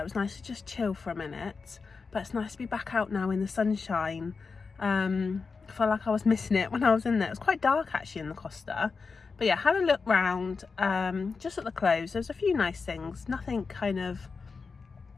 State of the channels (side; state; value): right; quieter; 4.8 dB